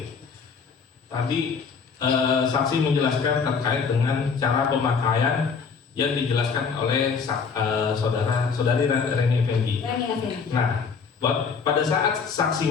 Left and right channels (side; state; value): right; quieter; 5.7 dB